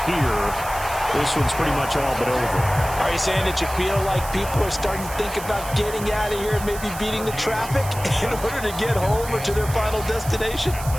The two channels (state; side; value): noise; right; hiss, 12 dB below the sound